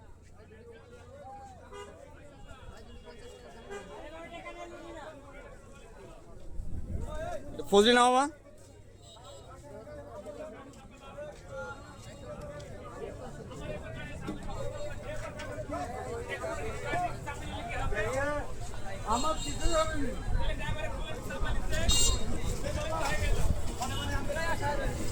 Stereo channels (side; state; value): both; identical; correlation 1.00